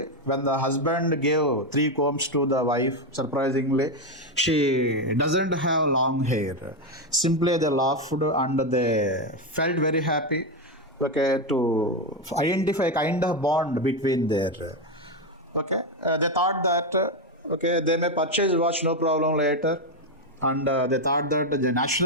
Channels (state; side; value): normal; both; correlation 0.08